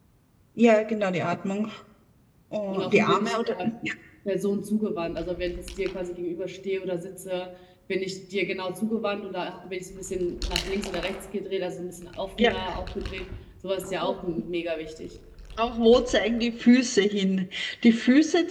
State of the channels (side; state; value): both; identical; correlation 1.00